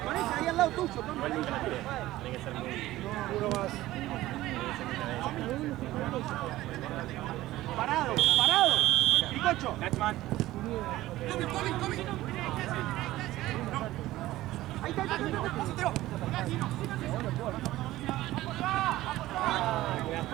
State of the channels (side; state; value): left; quieter; 16.2 dB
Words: ese, ahí al lado tuyo. Igual nunca la tiré. Tiene que ser muy. Uno más. Parado. Picocho. Lachman. Ahí está.